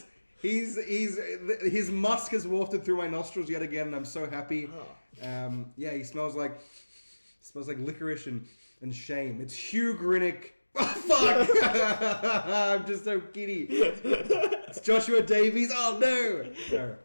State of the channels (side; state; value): both; inverted; correlation -1.00